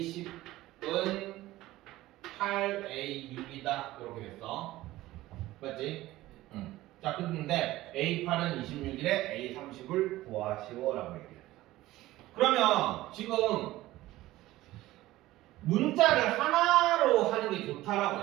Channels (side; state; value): left; quieter; 16.7 dB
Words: 8A6이다. 이렇게 됐어. 맞지? 자, 근데 A8은 26일에 A30을 구하시오라고 얘기했어. 그러면 지금 문자를 하나로 하는 게